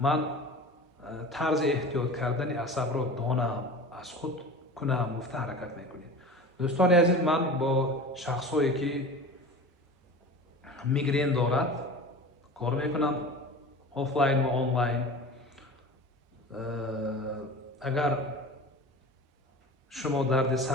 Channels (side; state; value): both; normal; correlation 0.35